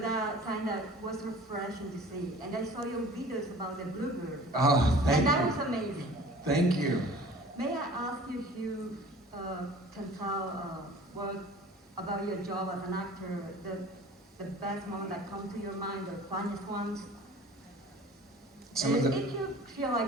kind of was refreshing to see. And I saw your videos about the bluebird, Oh, thank and that you. was amazing. Thank you. May I ask you if you can tell was about your job as an actor, the best moment that come to your mind, the funniest ones. Some of the- If you feel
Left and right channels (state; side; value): normal; both; correlation 0.45